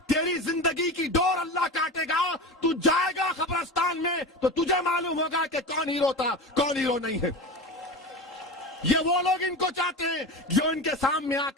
तेरी जिंदगी की डोर अल्लाह काटेगा। तू जाएगा कब्रिस्तान में तो तुझे मालूम होगा कि कौन हीरो था, कौन हीरो नहीं है। ये वो लोग इनको चाहते हैं जो इनके सामने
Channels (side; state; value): both; normal; correlation 0.27